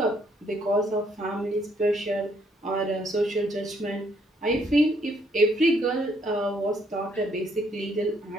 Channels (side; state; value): both; normal; correlation 0.69